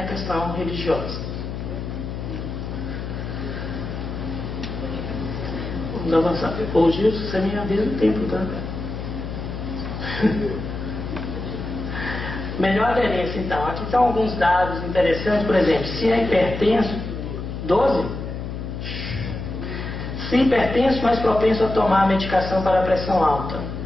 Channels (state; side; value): noise; left; hum, 6 dB below the sound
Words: questão religiosa. Vamos avançar. Ô Gilson, você me avisa o tempo, tá? Melhor aderência, então. Aqui estão alguns dados interessantes. Por exemplo, se é hipertenso, 12. Se hipertenso, mais propenso a tomar medicação para a pressão alta.